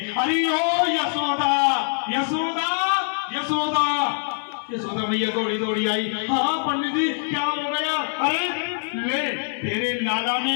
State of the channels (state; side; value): silent; right; 59 dB below the other